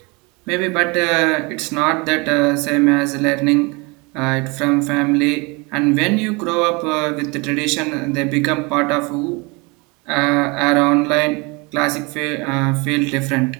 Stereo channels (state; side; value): quieter; left; 27.8 dB